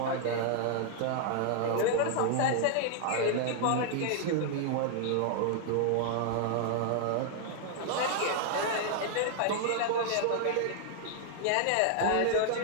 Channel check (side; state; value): both; different; correlation -0.01